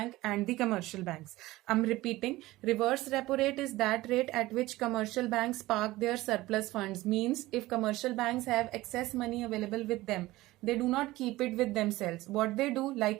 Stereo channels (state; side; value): quieter; left; 18.2 dB